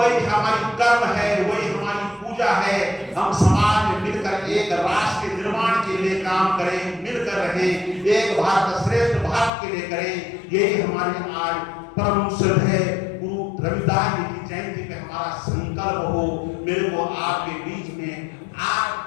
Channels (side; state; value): right; drops out; at 9.5 s